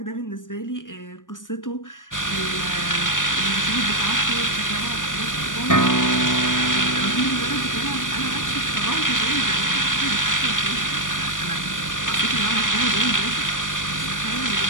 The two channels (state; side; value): late; right; 0.88 ms